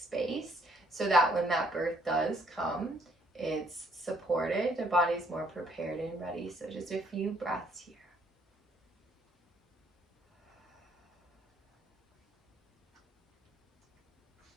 so that when that birth does come, it's supported, the body's more prepared and ready. So just a few breaths here.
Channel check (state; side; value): normal; both; correlation 0.65